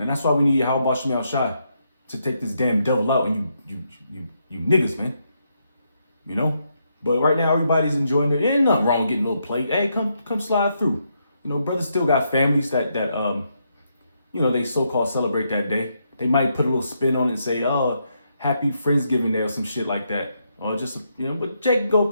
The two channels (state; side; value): inverted; both; correlation -0.79